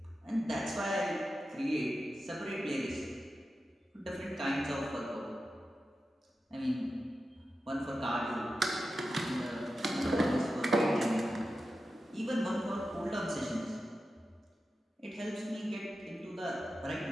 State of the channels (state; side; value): normal; both; correlation 0.92